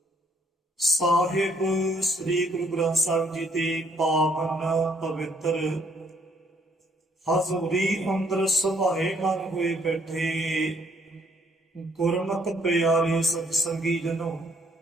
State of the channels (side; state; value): both; normal; correlation 0.67